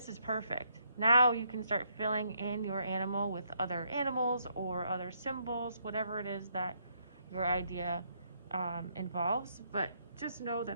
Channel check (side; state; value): both; inverted; correlation -0.74